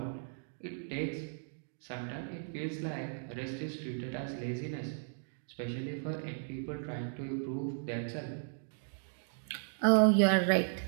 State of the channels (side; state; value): left; silent; digital silence